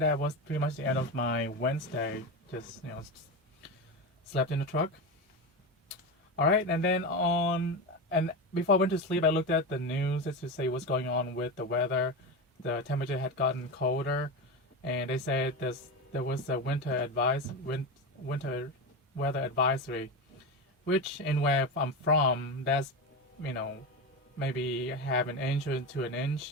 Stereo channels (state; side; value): normal; both; correlation 0.19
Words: was pretty much the end of my Wednesday. Just slept in the truck. All right, and then And before I went to sleep, I looked at the news just to see what's going on with the weather. The temperature had gotten colder, and they said there was a winter weather advisory, which in where I'm from, that's maybe half an inch to an